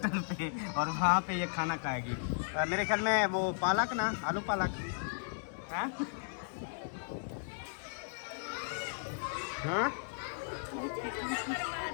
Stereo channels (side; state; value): right; silent; digital silence